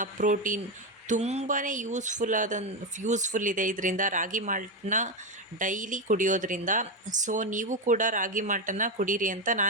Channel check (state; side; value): normal; both; correlation 0.11